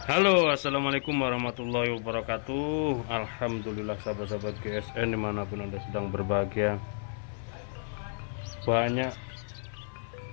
Halo, assalamualaikum warahmatullahi wabarakatuh. Alhamdulillah sahabat-sahabat GSN dimanapun anda sedang berbahagia. Banyak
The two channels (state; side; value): silent; right; 57 dB below the other